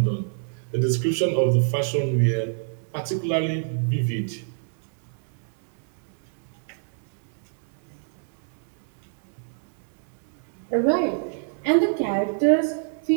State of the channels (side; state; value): left; silent; digital silence